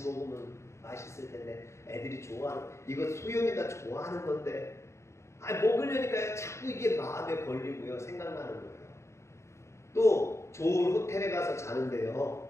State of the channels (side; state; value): right; late; 0.14 ms